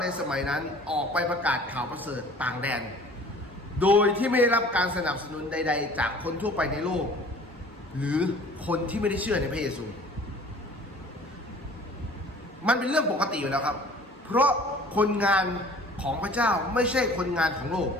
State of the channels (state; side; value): normal; both; correlation 0.48